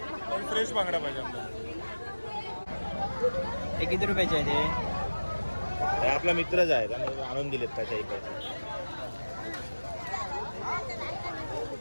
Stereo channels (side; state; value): both; inverted; correlation -1.00